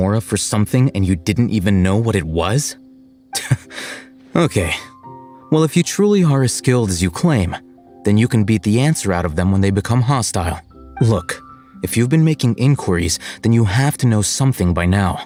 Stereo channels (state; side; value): identical; both; correlation 1.00